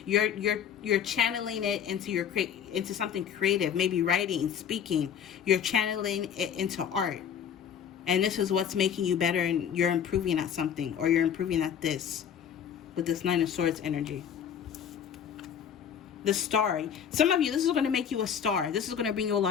you're channeling it into something creative, maybe writing, speaking. You're channeling it into art. And this is what's making you better, and you're improving at something, or you're improving at this with this Nine of Swords energy. The star. Some of you, this is going to make you a star. This is going to bring you a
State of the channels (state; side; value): quieter; right; 8.3 dB